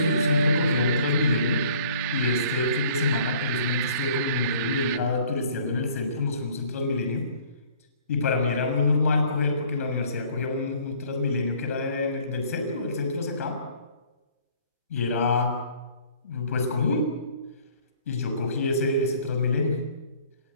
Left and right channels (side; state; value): both; inverted; correlation -0.55